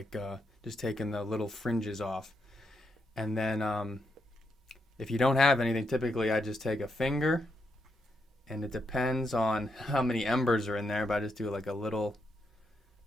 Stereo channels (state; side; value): normal; both; correlation 0.81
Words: just taking the little fringes off. And then if you don't have anything, typically I just take a finger, and it depends on how many embers are in there, but I just do like a little